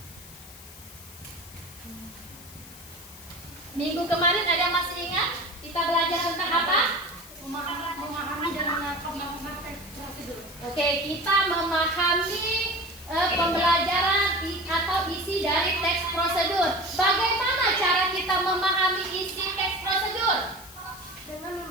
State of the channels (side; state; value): left; noise; hiss, 18 dB below the sound